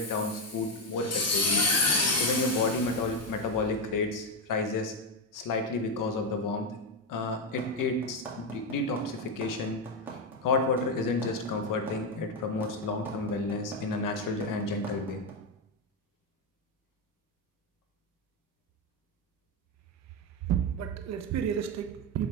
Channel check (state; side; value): normal; both; correlation 0.07